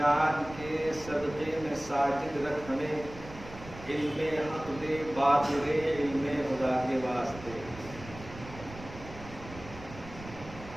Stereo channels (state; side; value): noise; right; rumble, 15 dB below the sound